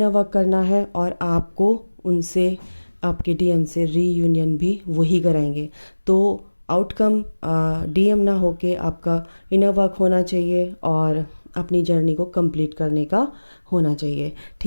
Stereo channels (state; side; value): inverted; both; correlation -1.00